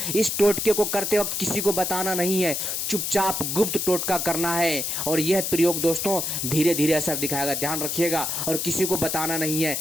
इस टोटके को करते वक्त किसी को बताना नहीं है, चुपचाप गुप्त टोटका करना है और यह प्रयोग दोस्तों धीरे धीरे असर दिखाएगा। ध्यान रखिएगा और किसी को बताना नहीं है,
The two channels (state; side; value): noise; left; hiss, 1 dB below the sound